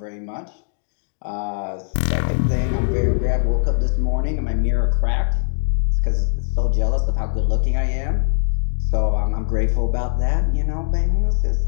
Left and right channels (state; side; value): silent; right; digital silence